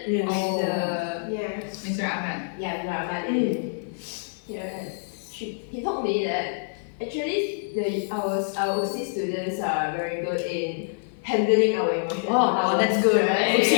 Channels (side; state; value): right; silent; 61 dB below the other